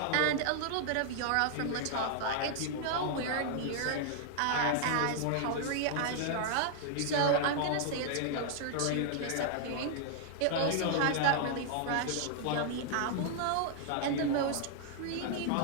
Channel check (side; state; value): both; different; correlation 0.00